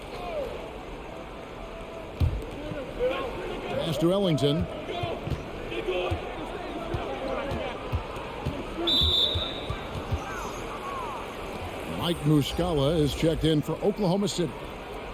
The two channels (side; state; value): both; identical; correlation 1.00